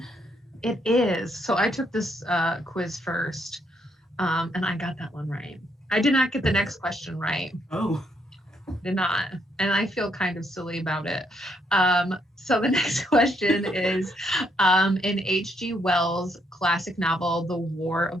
It is. So I took this quiz first, and I got that one right. I did not get the next question right. Oh. Did not. And I feel kind of silly about it. So the next question is in H.G. Wells' classic novel, The War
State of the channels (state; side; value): normal; both; correlation 0.73